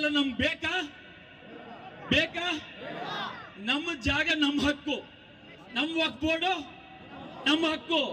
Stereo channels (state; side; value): identical; both; correlation 1.00